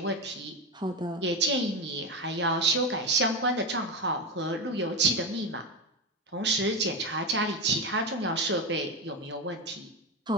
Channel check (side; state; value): both; normal; correlation 0.15